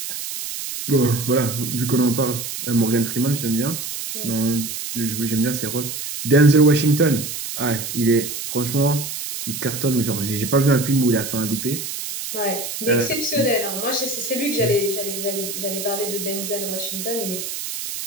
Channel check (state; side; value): noise; right; hiss, 6 dB below the sound